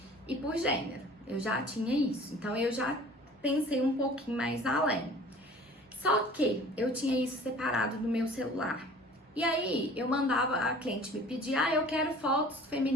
e por gênero. Eu já tinha isso, então eu já pensei um pouquinho mais além. Só que eu tinha isso separado no meu celular. E aí eu mandava, a cliente me pedir, eu quero fotos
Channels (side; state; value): both; normal; correlation 0.47